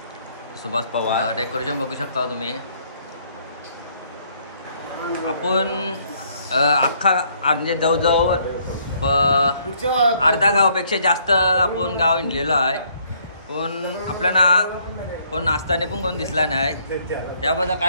सुभाष पवार. डेकोरेशन बघू शकता तुम्ही. आपण अख्खा म्हणजे जवळजवळ अर्धा गावापेक्षा जास्त आपण गाव हिंडलेलो आहे. पण आपल्याला कोण नाचताना पण कोण दिसला नाही. याबद्दल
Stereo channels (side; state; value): both; inverted; correlation -0.66